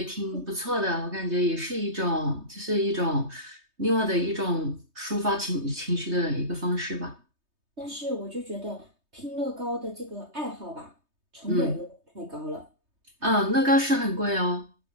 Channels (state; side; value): late; left; 3.2 ms